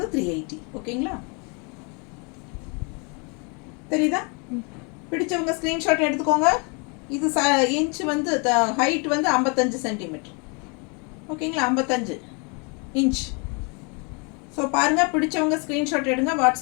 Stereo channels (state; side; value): quieter; right; 33.7 dB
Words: 380. ஓகேங்களா. தெரியுதா? பிடிச்சவங்க ஸ்க்ரீன்ஷாட் எடுத்துக்கோங்க. இது இன்ச் வந்து ஹைட் வந்து 55 சென்டிமீட்டர். ஓகேங்களா, 55 இன்ச். ஸோ பாருங்கள், பிடிச்சவங்க ஸ்க்ரீன்ஷாட் எடுங்க,